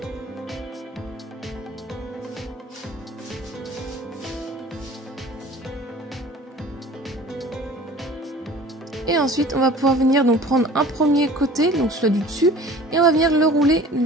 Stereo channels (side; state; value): both; normal; correlation 0.46